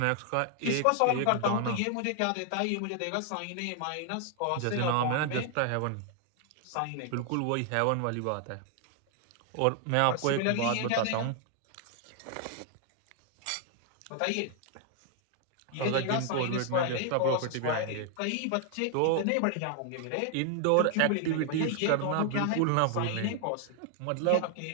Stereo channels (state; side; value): different; both; correlation 0.00